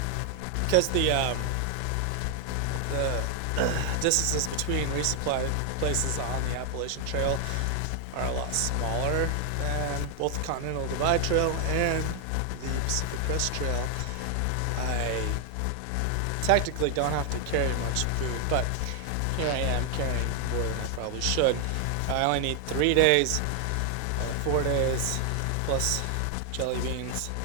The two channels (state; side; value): different; both; correlation 0.00